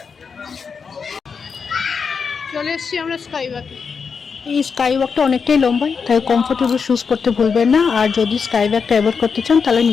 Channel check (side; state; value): right; quieter; 5.7 dB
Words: চলে এসেছি আমরা স্কাই ওয়াকে। এই স্কাই ওয়াকটা অনেকটাই লম্বা, তাই কমফোর্টেবল শুজ পরতে ভুলবেন না। আর যদি স্কাই ওয়াকটা অ্যাভয়েড করতে চান তাহলে